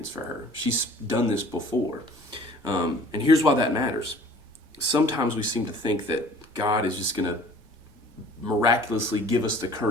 for her. She's done this before. And here's why that matters. sometimes we seem to think that God is just going to miraculously give us the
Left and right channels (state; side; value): normal; both; correlation 0.50